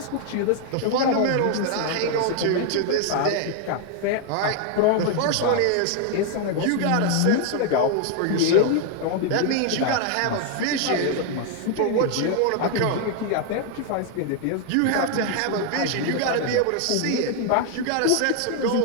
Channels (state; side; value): different; both; correlation 0.00